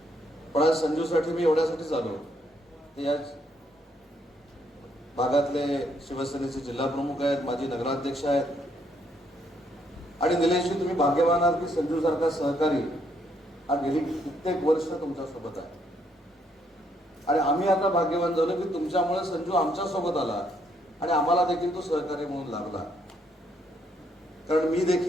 पण आज संजूसाठी मी एवढ्यासाठीच आलो की या भागातले शिवसेनेचे जिल्हा प्रमुख आहेत, माजी नगराध्यक्ष आहेत, आणि निलेशजी, तुम्ही भाग्यवान आहात की संजू सारखा सहकारी हा गेली कित्येक वर्ष तुमच्या सोबत आहे. आणि आम्ही आता भाग्यवान झालो की तुमच्यामुळे संजू आमच्या सोबत आला आणि आम्हाला देखील तो सहकारी म्हणून लागला. कारण मी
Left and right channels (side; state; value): both; normal; correlation 0.72